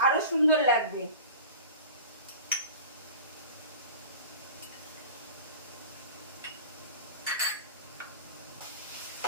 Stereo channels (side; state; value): both; inverted; correlation -0.37